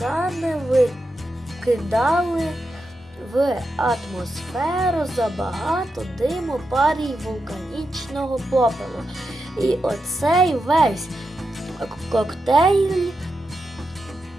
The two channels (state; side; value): normal; both; correlation 0.87